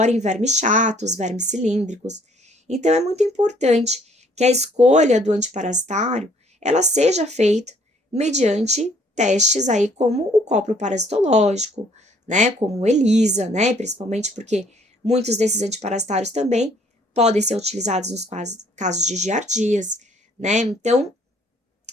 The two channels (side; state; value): both; normal; correlation 0.62